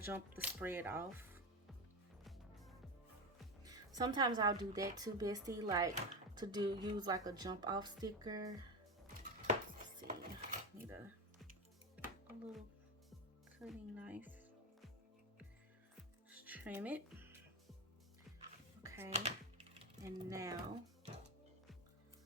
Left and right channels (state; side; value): normal; both; correlation 0.17